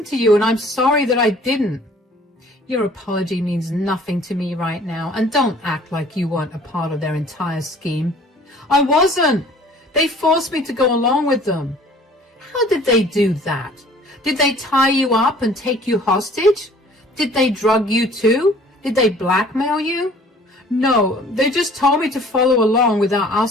to you, and I'm sorry that I didn't." "Your apology means nothing to me right now, and don't act like you weren't a part of their entire scheme." "I wasn't. They forced me to go along with them." "How did they do that? Did they tie you up and take you hostage? Did they drug you too? Did they blackmail you?" "No, they just told me to follow along without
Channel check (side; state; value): both; normal; correlation 0.52